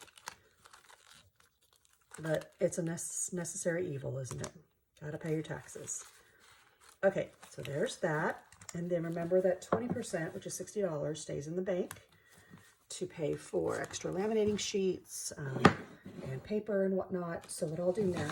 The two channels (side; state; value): both; identical; correlation 1.00